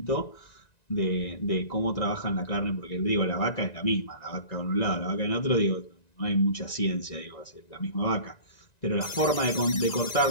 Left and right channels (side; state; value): right; late; 1.9 ms